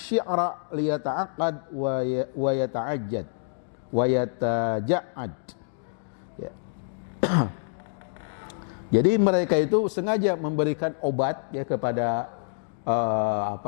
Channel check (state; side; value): silent; right; digital silence